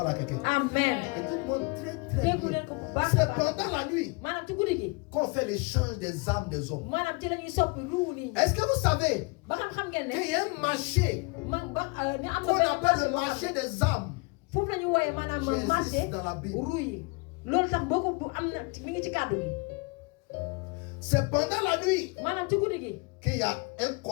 à quelqu'un? amen Écoute-moi très très déggu bien. leen ko bu baax a C'est baax pendant la nuit maanaam ci guddi gi qu'on fait l'échange des âmes des hommes. maanaam ci la ñuy soppi ruu nit ñi Est-ce que vous savez ba xam ngeen ne qu'il y a un marché ni am qu'on na appelle le marché des âmes foofu la ñuy wooyee maanaam qui marché existe dans la Bible? ruu yi loolu tax boo ko bu am na mi ngi ci kàddu gi C'est pendant la nuit maanaam ci guddi gi qu'il y a un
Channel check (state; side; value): quieter; right; 28.9 dB